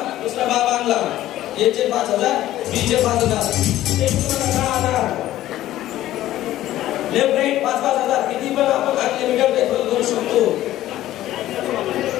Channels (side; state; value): right; quieter; 14.1 dB